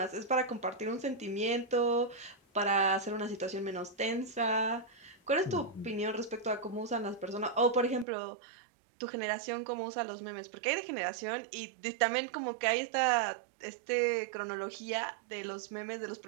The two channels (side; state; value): left; drops out; at 8.1 s